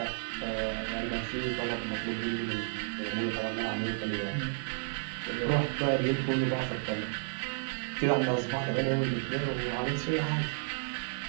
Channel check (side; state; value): left; silent; digital silence